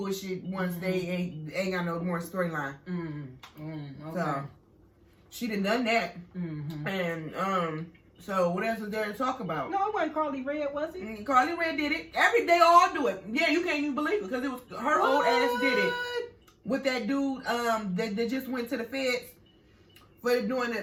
once they ain't got no more storyline. Okay. So she done that. And so what else is there to talk about? No, it wasn't Carly Red, was it? Carly Red did it. They all do it. Yeah, you can't even believe it because it was her old ass did it with that dude that just went to the feds for doing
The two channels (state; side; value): identical; both; correlation 1.00